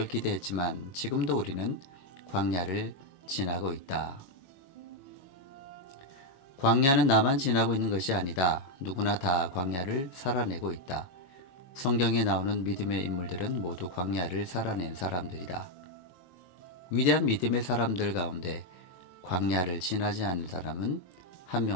기대했지만 지금도 우리는 광야를 지나고 있다. 광야는 나만 지나고 있는 것이 아니다. 누구나 다 광야를 살아내고 있다. 성경에 나오는 믿음의 인물들은 모두 광야를 살아낸 사람들이다. 위대한 믿음의 사람들 가운데 광야를 지나지 않은 사람은 한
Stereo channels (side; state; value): right; late; 22 ms